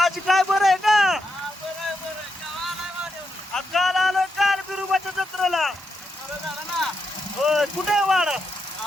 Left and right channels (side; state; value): both; normal; correlation 0.83